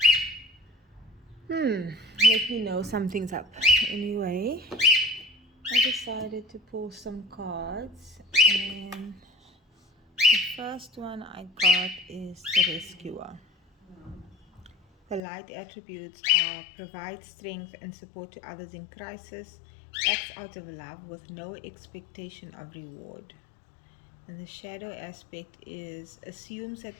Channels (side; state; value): right; drops out; at 15.2 s